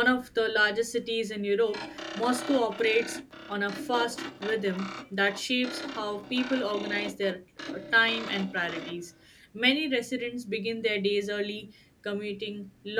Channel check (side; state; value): both; identical; correlation 1.00